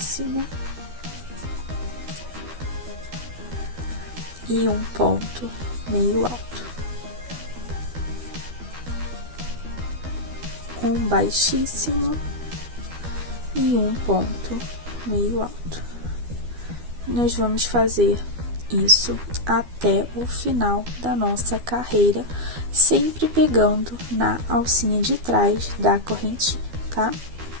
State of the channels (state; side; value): late; left; 12 ms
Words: e um ponto meio alto. Um baixíssimo e um ponto meio alto. Nós vamos fazer isso até o final da nossa carreira, sempre pegando na alcinha de trás da correntinha, tá?